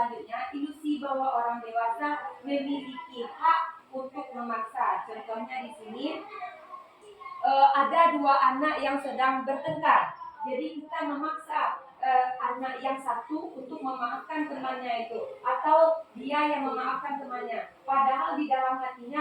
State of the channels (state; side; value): identical; both; correlation 1.00